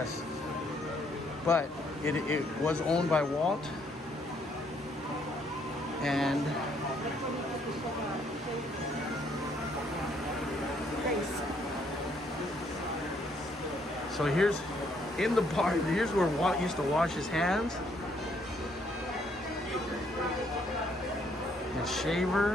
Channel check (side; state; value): both; normal; correlation 0.69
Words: But it was owned by Walt. And so here's in the barn, here's where Walt used to wash his hands. And shaver.